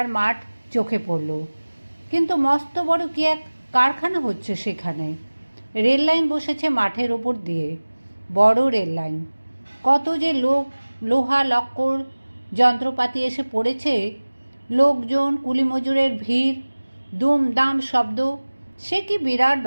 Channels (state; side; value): inverted; both; correlation -1.00